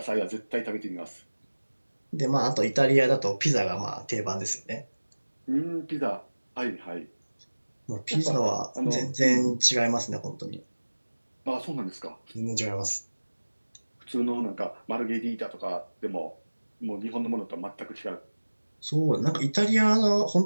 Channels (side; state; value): both; inverted; correlation -1.00